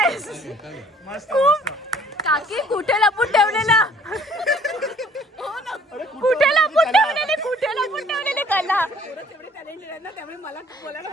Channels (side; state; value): both; normal; correlation 0.57